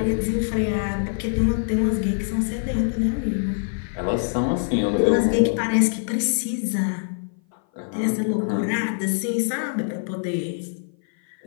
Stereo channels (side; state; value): right; silent; 57 dB below the other